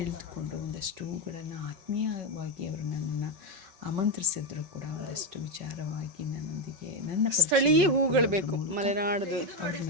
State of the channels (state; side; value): late; left; 5.3 ms